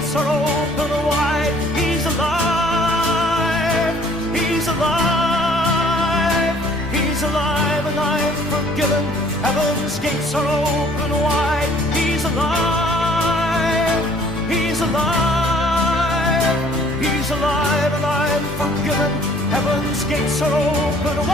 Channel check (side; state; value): both; normal; correlation 0.57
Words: are open wide. He's alive. He's alive. He's alive and I've forgiven. Heaven's gates are open wide. He's alive. He's alive. He's alive and I've forgiven. Heaven's gates are open